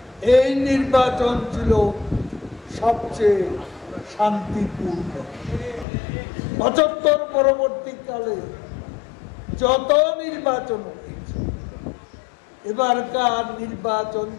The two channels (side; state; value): right; drops out; at 5.9 s